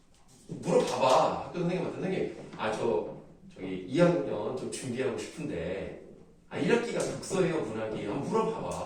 물어봐봐. 학교 선생님한테 선생님 저기 2학년 좀 준비하고 싶은데 1학기가 독서예요 문학이에요? 한번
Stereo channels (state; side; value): identical; both; correlation 1.00